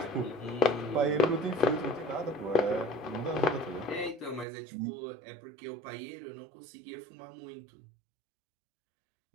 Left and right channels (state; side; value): drops out; left; at 4.5 s